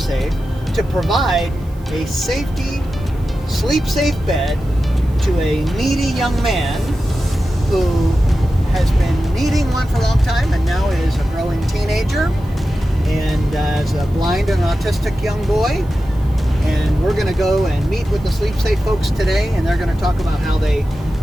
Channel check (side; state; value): right; noise; hiss, 29 dB below the sound